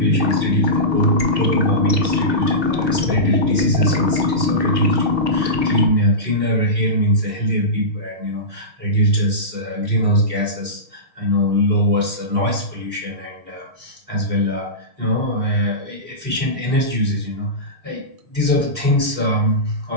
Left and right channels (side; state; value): left; late; 6.5 ms